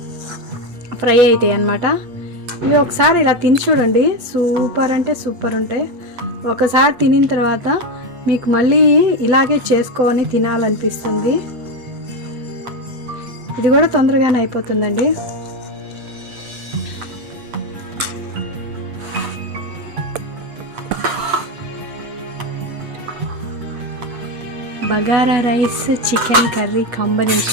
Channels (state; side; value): late; left; 8.1 ms